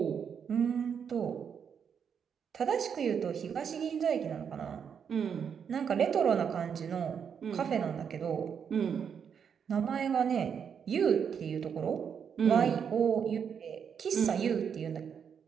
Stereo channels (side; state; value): left; quieter; 7.3 dB